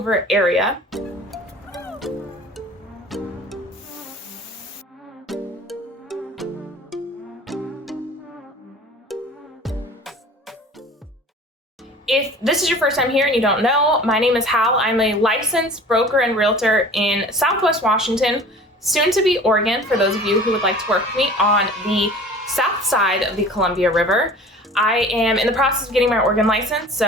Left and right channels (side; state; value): both; normal; correlation 0.43